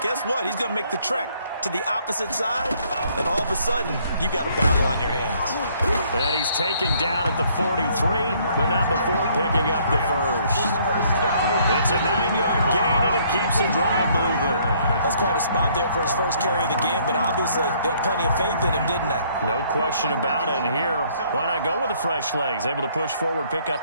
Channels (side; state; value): both; inverted; correlation -0.64